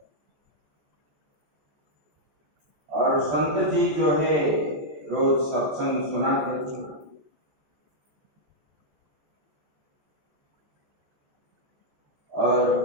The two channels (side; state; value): left; late; 14 ms